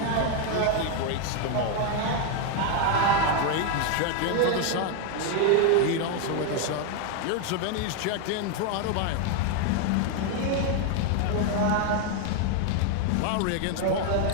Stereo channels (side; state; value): both; different; correlation 0.01